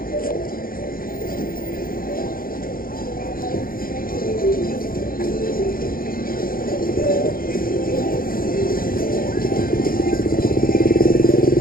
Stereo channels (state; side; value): late; right; 0.42 ms